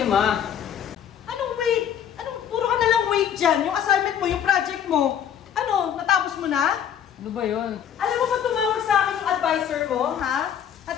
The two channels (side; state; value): right; quieter; 9.0 dB